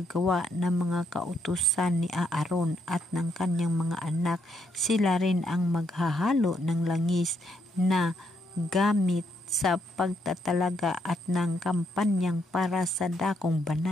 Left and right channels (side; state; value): both; normal; correlation 0.75